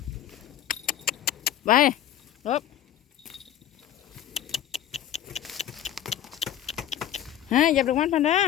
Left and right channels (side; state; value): right; quieter; 11.2 dB